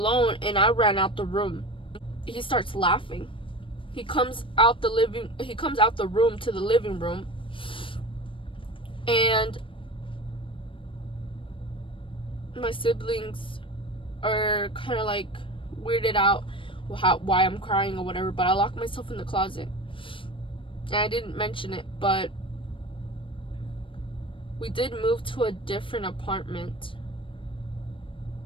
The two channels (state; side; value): late; right; 0.25 ms